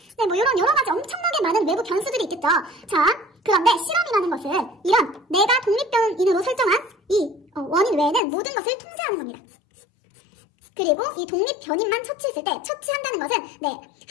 이런 여러 가지 엄청나게 많은 외부 변수들이 있겠죠. 자, 그런데 실험이라는 것은 이런 내가 독립변인으로 설정한 이 원인 외에는 모든 것을 통제하는 겁니다. 그리고 이 독립변인만 처치했을 때, 처치한다는 것은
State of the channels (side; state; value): right; drops out; at 8.2 s